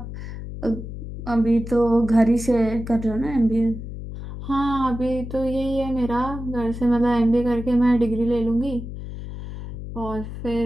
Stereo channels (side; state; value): left; noise; hum, 9 dB below the sound